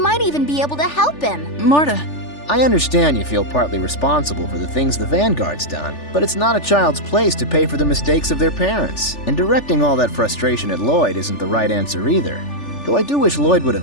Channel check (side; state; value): right; late; 3.4 ms